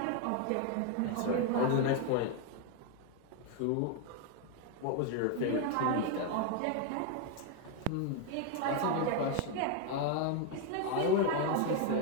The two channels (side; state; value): both; different; correlation 0.01